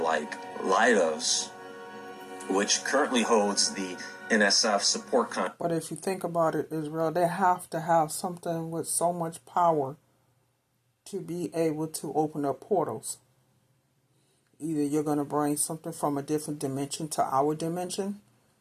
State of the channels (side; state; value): both; identical; correlation 1.00